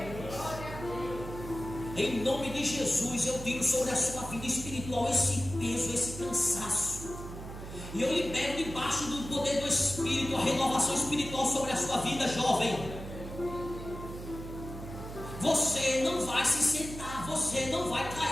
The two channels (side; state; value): right; noise; hum, 10 dB below the sound